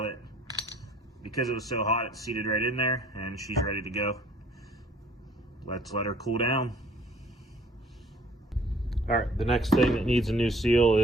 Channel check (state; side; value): normal; both; correlation 0.56